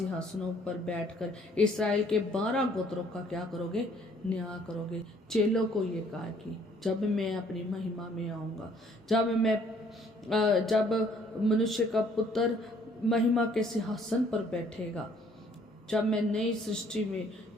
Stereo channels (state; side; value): normal; both; correlation 0.61